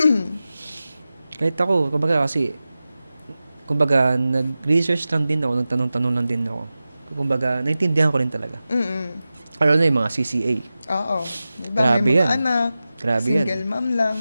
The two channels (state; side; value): inverted; both; correlation -0.95